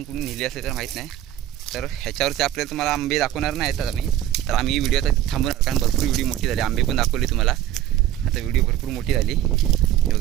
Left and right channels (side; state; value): left; quieter; 12.2 dB